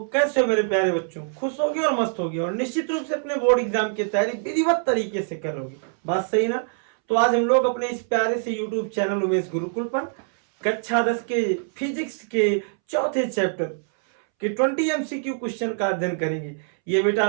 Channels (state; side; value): silent; left; 63 dB below the other